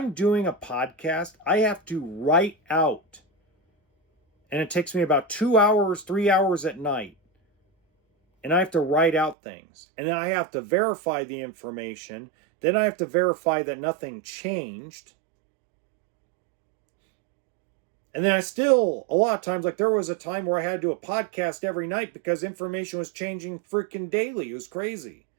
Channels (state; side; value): drops out; left; at 9.3 s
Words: doing a podcast, I have to write out, and it takes me about 2 hours, 3 hours at night, and I have to write out things, and then I have to verify the information. Then I have to verify that nothing changed. And then I still, a lot of times, like there was a time where I had to do a podcast every night because information was changing freaking daily. It was crazy.